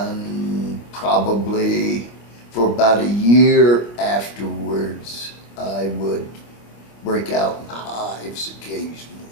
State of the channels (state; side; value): late; right; 26 ms